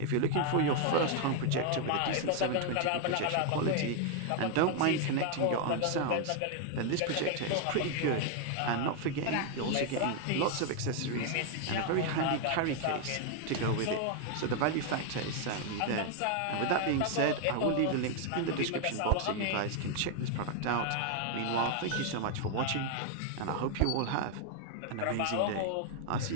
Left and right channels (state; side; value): different; both; correlation 0.00